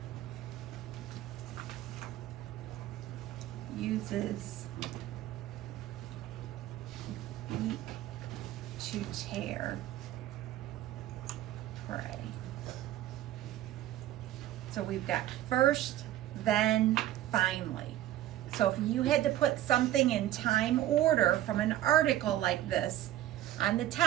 uses beak to tear prey. So we've got first, then, finally. So if you had to put something in time order from an article like this, on the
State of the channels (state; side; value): quieter; left; 13.6 dB